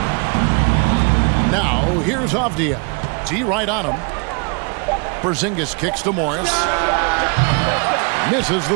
Now, here's Avdia. T right on him. Porzingis kicks to Morris. Misses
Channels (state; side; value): quieter; left; 33.8 dB